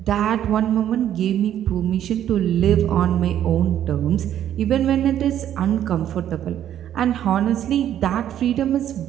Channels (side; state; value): left; quieter; 10.9 dB